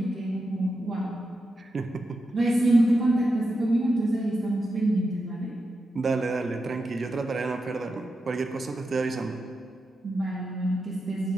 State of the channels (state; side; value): normal; both; correlation 0.88